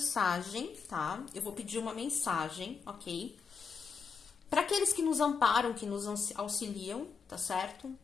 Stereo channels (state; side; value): quieter; right; 5.7 dB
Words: tá? Eu vou pedir uma mensagem, ok? Para aqueles que nos amparam, que nos auxiliam, tá certo?